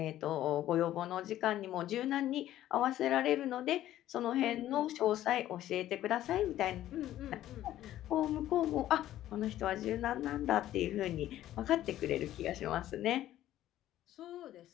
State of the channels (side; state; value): right; quieter; 13.3 dB